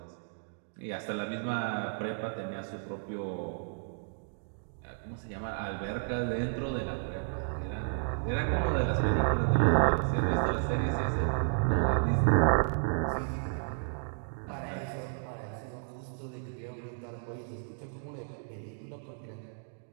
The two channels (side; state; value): left; silent; digital silence